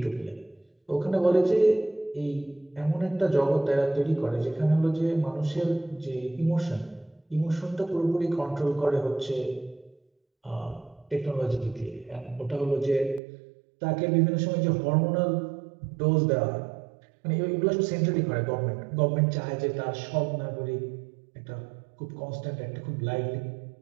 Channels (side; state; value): left; drops out; at 13.2 s